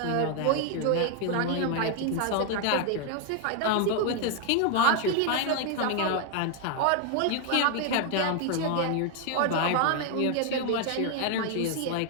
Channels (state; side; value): different; both; correlation 0.01